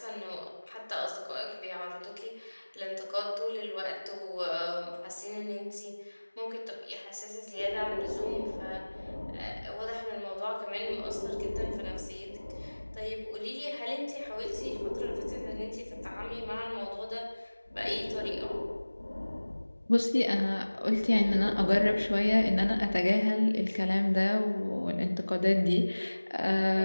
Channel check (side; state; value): both; inverted; correlation -1.00